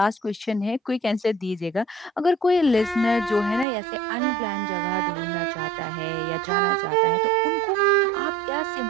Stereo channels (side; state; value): left; drops out; at 3.7 s